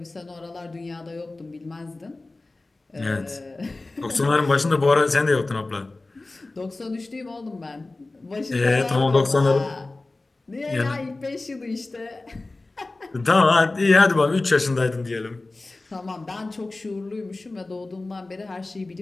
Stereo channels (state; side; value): quieter; right; 3.1 dB